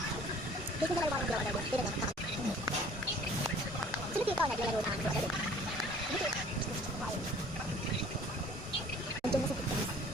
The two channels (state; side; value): normal; both; correlation 0.51